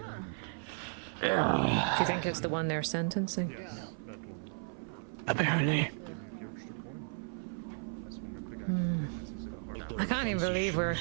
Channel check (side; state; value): left; silent; 55 dB below the other